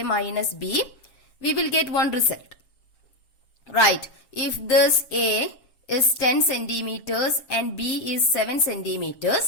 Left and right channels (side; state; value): right; late; 7.2 ms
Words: minus B, we will get one result. Right, if this A is 10 centimeters and B is 7